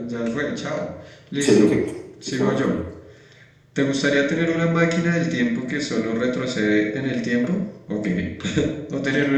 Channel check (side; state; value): both; identical; correlation 1.00